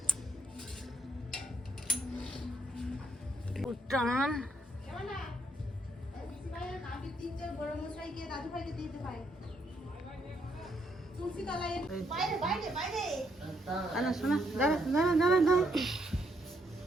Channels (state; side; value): normal; both; correlation 0.74